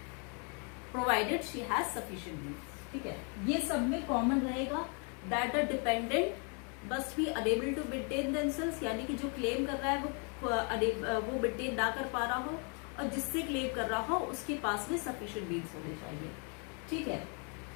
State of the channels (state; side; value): quieter; right; 37.2 dB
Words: provided she has sufficient means. ठीक है, ये सब में कॉमन रहेगा that the dependent must be unable to maintain themselves, यानी कि जो क्लेम कर रहा है वो मेंटेन ना कर पा रहा हो और जिससे क्लेम कर रहा हो उसके पास में सफिशिएंट मीन्स होने चाहिए। ठीक है,